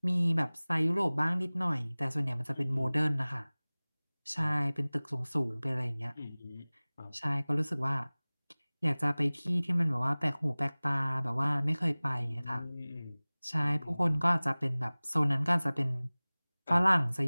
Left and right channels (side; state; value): both; inverted; correlation -1.00